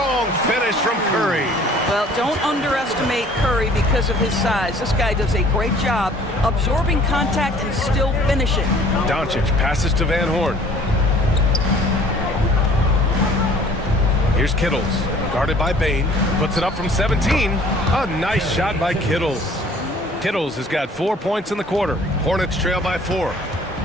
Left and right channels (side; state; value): both; normal; correlation 0.53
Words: finish from Curry. Well, don't underestimate Curry because of his size. This guy does a great job absorbing contact and still finishing. Doncic passes to Van Horn. Here's Kittles, guarded by Bane. Puts it up from 17. A nice shot by Kittles. Kittles has got 4 points in the quarter. Hornets trail by 4.